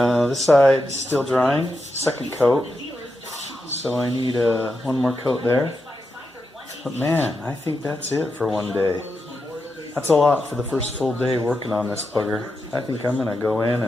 This side is still drying, second coat. So I need one more coat there. But man, I think that's it for one day. That's a lot for the first full day working on this bugger. I think I'm going to go in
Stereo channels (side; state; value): both; normal; correlation 0.87